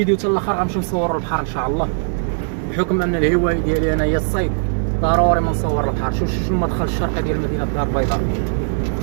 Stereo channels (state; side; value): silent; left; digital silence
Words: حتى الاخر، غنمشيو نصوروا البحر ان شاء الله. بحكم ان الهوايه ديالي انا هي الصيد، ضروري ما نصور البحر. شوف المدخل الشرقي ديال مدينة الدار البيضاء.